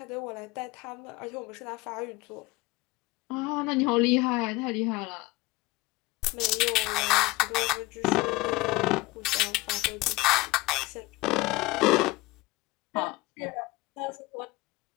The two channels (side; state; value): right; quieter; 21.5 dB